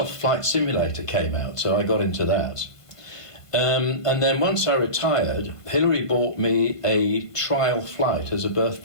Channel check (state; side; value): late; right; 1.5 ms